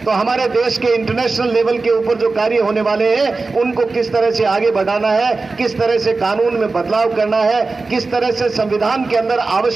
तो हमारे देश के इंटरनेशनल लेवल के ऊपर जो कार्य होने वाले हैं उनको किस तरह से आगे बढ़ाना है, किस तरह से कानून में बदलाव करना है, किस तरह से संविधान के अंदर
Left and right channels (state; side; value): quieter; left; 3.8 dB